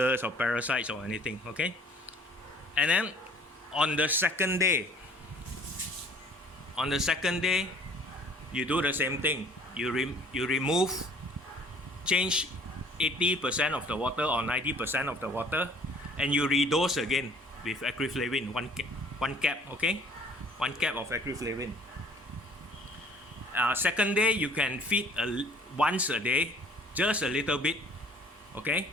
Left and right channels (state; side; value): normal; both; correlation 0.54